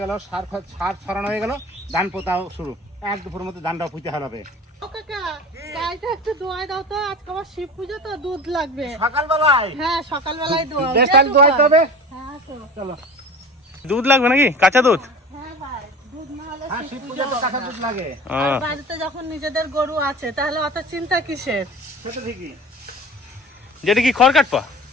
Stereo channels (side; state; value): both; normal; correlation 0.36